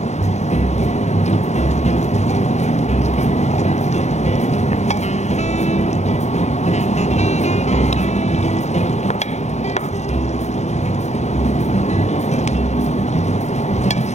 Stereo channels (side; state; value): right; late; 0.33 ms